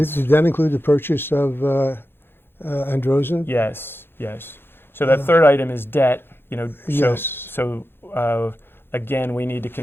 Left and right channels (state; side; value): late; right; 0.10 ms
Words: Did that include the purchase of Androzen? Yes, yes. So that third item is debt. Yes. So again, we need to